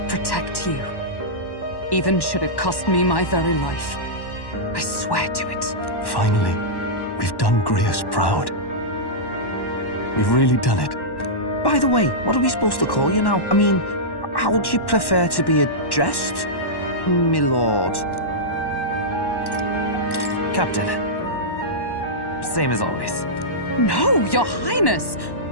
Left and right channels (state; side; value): late; right; 1.1 ms